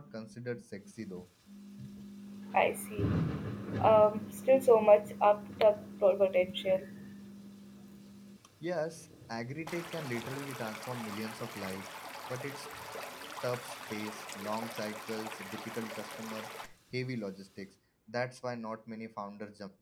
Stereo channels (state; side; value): identical; both; correlation 1.00